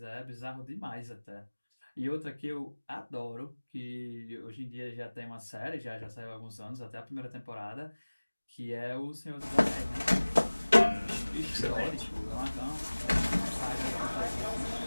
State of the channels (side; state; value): both; inverted; correlation -1.00